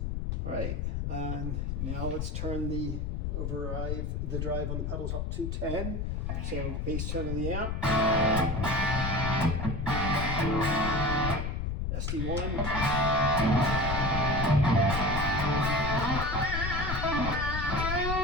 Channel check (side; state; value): left; noise; rumble, 2 dB below the sound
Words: All right, and now let's turn the drive on the pedals up to 10. So bass tone of the amp. SD-1.